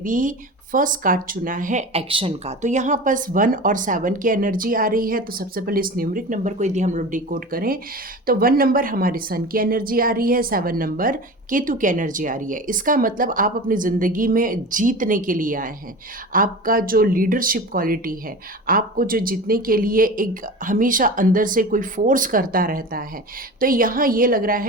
फर्स्ट कार्ड चुना है एक्शन का। तो यहाँ पर 1 और 7 की एनर्जी आ रही है। तो सबसे पहले इस न्यूमरिक नंबर को यदि हम लोग डिकोड करें तो 1 नंबर हमारे सन की एनर्जी आ रही है, 7 नंबर केतु की एनर्जी आ रही है। इसका मतलब आप अपनी ज़िंदगी में जीतने के लिए आए हैं। आपका जो लीडरशिप क्वालिटी है, आपको जो जीतने के लिए एक हमेशा अंदर से कोई फोर्स करता रहता है, तो यहाँ ये लग रहा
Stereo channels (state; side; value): normal; both; correlation 0.32